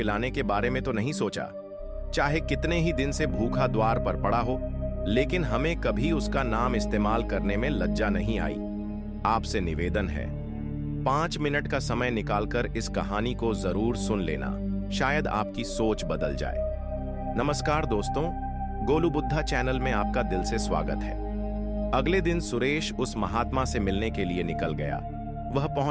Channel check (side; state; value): both; identical; correlation 1.00